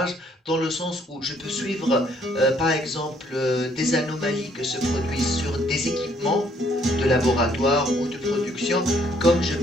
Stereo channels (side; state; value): both; normal; correlation 0.66